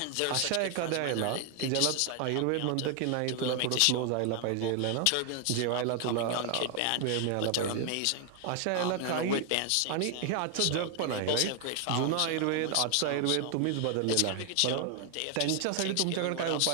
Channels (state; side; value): different; both; correlation 0.00